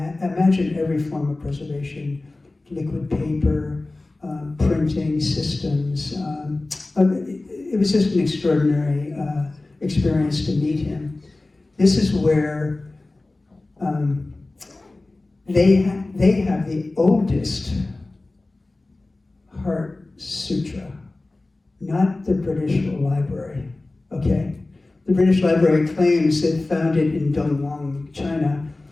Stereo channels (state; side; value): quieter; right; 3.0 dB